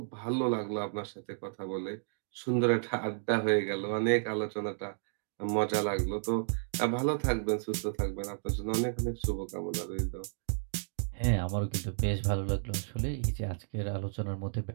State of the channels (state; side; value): silent; left; digital silence